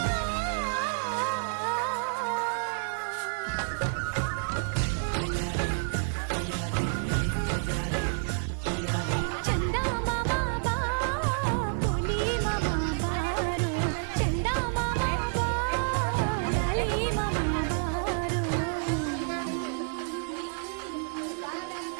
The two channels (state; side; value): silent; left; 58 dB below the other